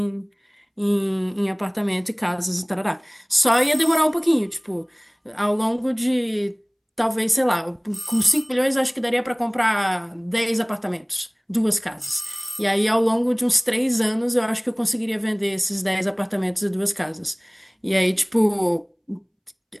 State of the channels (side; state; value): both; identical; correlation 1.00